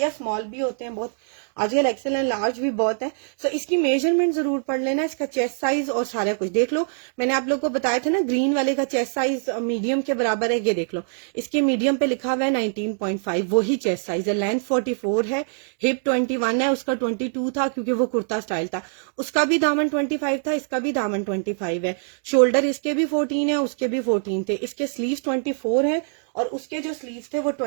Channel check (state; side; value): silent; left; digital silence